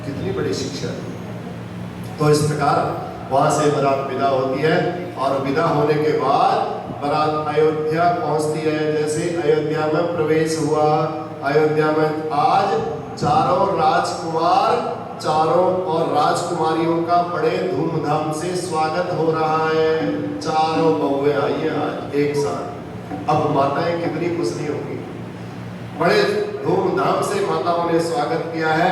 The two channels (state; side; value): identical; both; correlation 1.00